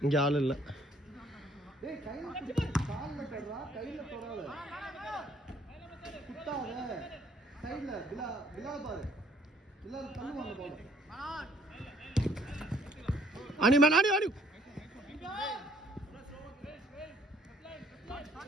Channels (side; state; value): both; normal; correlation 0.61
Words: இங்க ஆள் இல்ல. டேய் கையில கால்ல போடுறா, கையில தொடாத, குத்தாத, சைடுல பிலா பாரு, பிலா தள்ளுவாங்க பால். ஆனி மேன் ஆனி ஆனி.